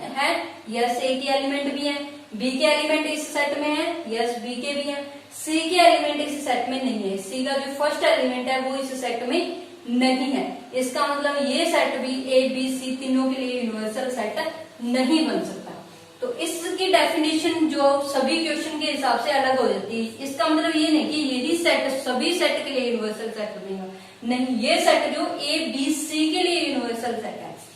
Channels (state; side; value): identical; both; correlation 1.00